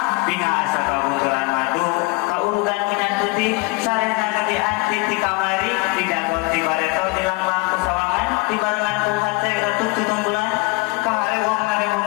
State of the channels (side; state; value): right; quieter; 26.0 dB